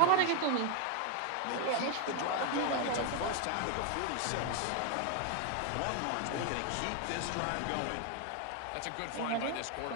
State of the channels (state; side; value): different; both; correlation 0.01